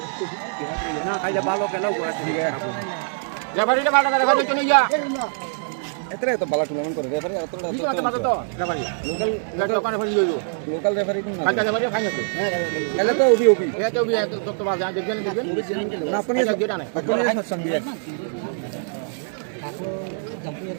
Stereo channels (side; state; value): left; silent; digital silence